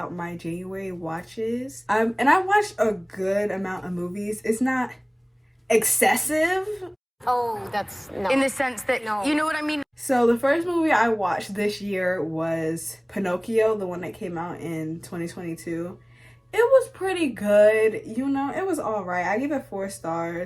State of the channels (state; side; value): identical; both; correlation 1.00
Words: my January watches. And I watched a good amount of movies. It's not excessive. Oh, that's no. In the sense that, no. You know what I mean? So the first movie I watched this year was Pinocchio, the one that came out in 2022. It was pretty good, you know, it was all right. I give it 4